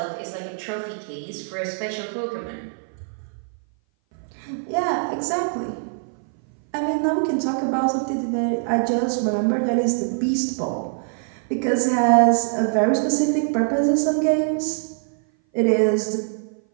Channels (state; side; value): silent; left; 58 dB below the other